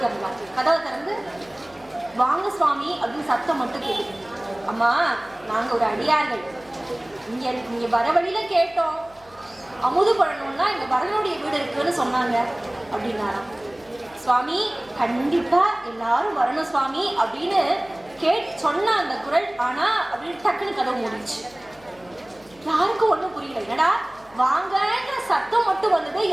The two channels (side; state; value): left; noise; hum, 27 dB below the sound